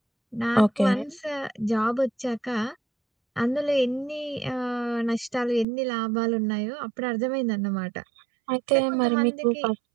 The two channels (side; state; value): left; drops out; at 5.7 s